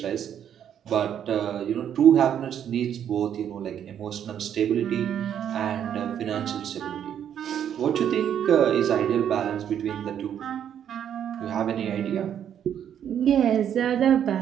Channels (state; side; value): quieter; left; 9.4 dB